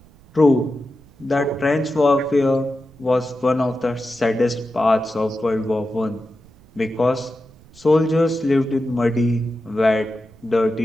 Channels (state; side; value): noise; right; rumble, 26 dB below the sound